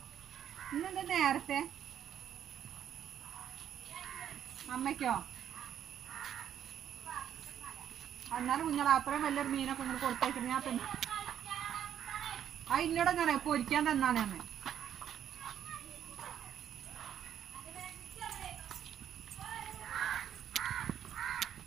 ഇന്നെന്താ നേരത്തെ? അമ്മയ്ക്കോ? എന്നാലും കുഞ്ഞാൽ അത്രയും വലിയൊരു മീനൊക്കെ ഇങ്ങനെ കൊടുത്തേക്കുന്നത് ഞാൻ തന്നെ. ആ ഇന്നോട് ഞാൻ പൊരിക്കാൻ തന്നാണ് അമ്മ.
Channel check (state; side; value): quieter; left; 9.8 dB